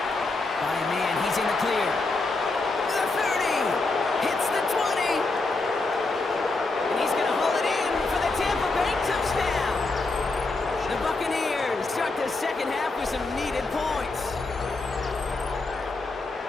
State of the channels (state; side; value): quieter; right; 3.4 dB